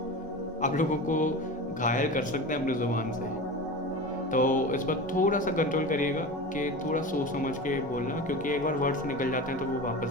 आप लोगों को घायल कर सकते हैं अपनी ज़ुबान से। तो इस पर थोड़ा सा कंट्रोल करिएगा कि थोड़ा सोच समझ के बोलना, क्योंकि एक बार वर्ड्स निकल जाते हैं तो वो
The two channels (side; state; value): both; normal; correlation 0.29